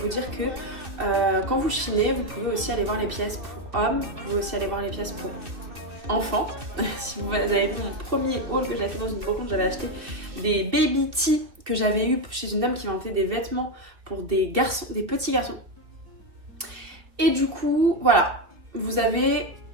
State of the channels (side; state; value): left; late; 2.5 ms